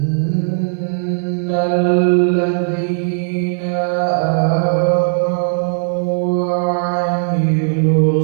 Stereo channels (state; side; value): silent; left; 66 dB below the other